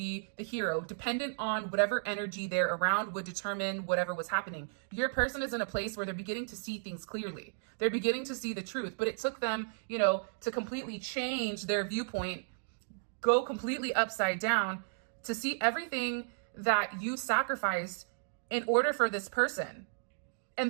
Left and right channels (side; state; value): left; silent; digital silence